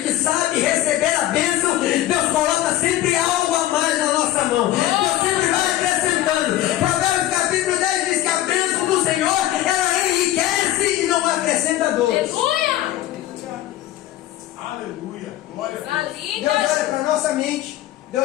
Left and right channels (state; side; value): quieter; right; 14.2 dB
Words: sabe receber a bênção, Deus coloca sempre algo a mais na nossa mão. Deus sempre vai acrescentando. Provérbios capítulo 10 diz que a bênção do Senhor, ela enriquece e não acrescenta dores. Aleluia! Aleluia. Glória a Coisa Deus. linda! Deus olha para a nossa mente,